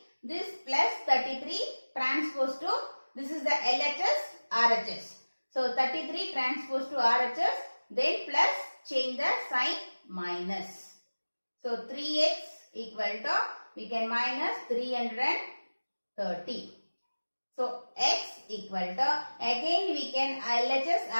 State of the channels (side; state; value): both; inverted; correlation -1.00